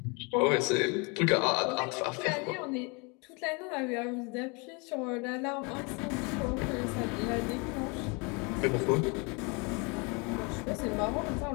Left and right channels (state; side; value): quieter; right; 30.8 dB